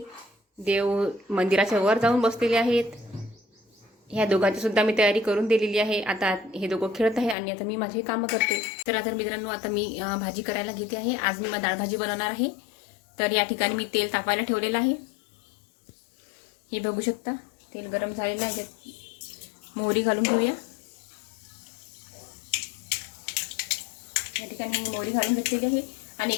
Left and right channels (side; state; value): right; drops out; at 7.4 s